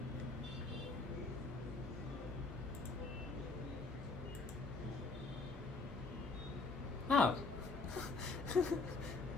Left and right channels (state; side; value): quieter; right; 3.8 dB